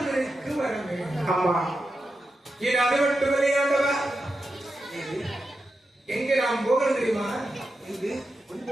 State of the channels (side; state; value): both; normal; correlation 0.89